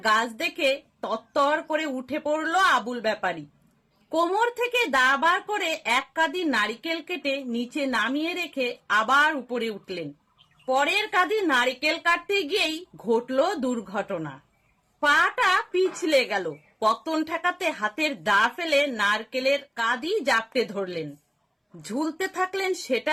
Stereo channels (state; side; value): identical; both; correlation 1.00